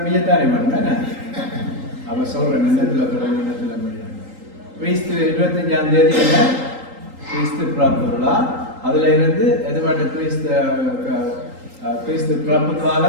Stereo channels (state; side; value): late; left; 3.8 ms